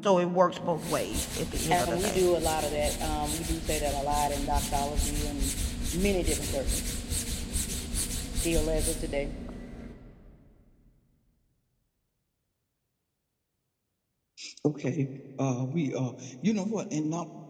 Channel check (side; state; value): both; identical; correlation 1.00